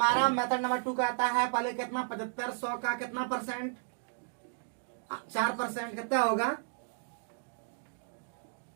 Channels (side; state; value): left; silent; digital silence